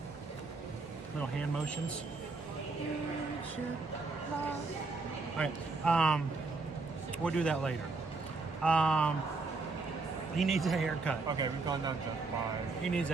Little hand motions. Alright, we'll do that later. He needs a haircut. Okay, we've gone down to 5. He needs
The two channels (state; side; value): quieter; left; 3.8 dB